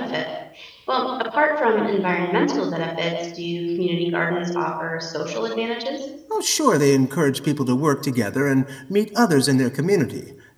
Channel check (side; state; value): both; identical; correlation 1.00